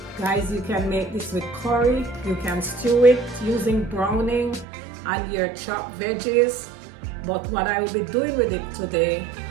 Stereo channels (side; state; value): left; drops out; at 4.7 s